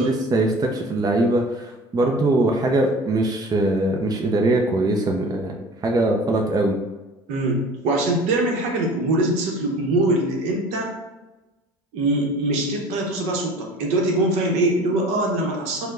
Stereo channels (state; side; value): normal; both; correlation 0.42